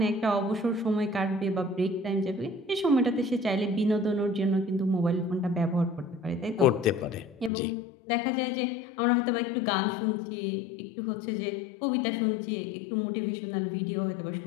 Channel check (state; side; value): drops out; right; at 7.5 s